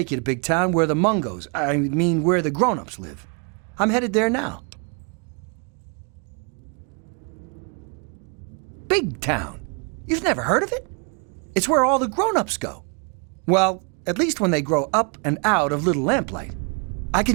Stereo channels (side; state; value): left; quieter; 37.1 dB